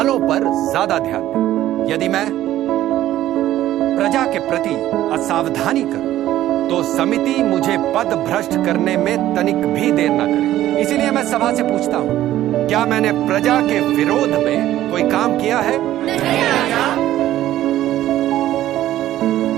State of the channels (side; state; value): left; quieter; 13.6 dB